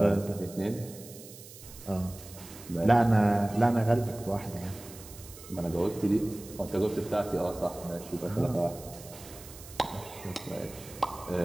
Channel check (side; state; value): right; noise; hiss, 17 dB below the sound